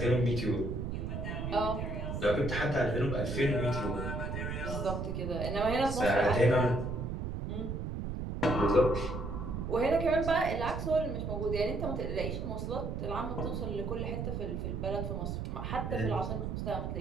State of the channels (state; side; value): noise; right; rumble, 3 dB below the sound